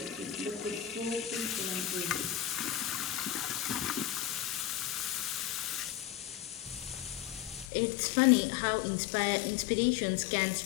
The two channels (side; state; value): right; drops out; at 7.7 s